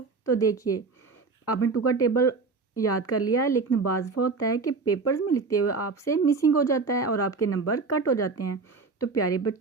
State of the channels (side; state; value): left; quieter; 4.3 dB